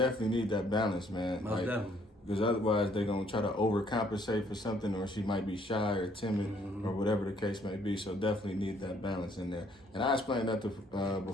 need that balance, man. Most definitely. Because otherwise they're going to try to overcompensate for something, or she might be shy or timid, mm-hmm. or whatever the case may be. So definitely need that balance in there. And I explained that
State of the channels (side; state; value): both; normal; correlation 0.65